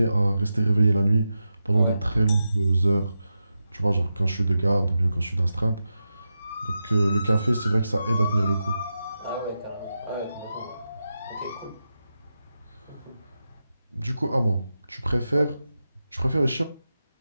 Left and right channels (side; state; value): both; inverted; correlation -0.90